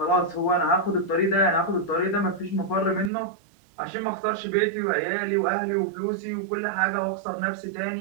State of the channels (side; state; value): left; drops out; at 3.1 s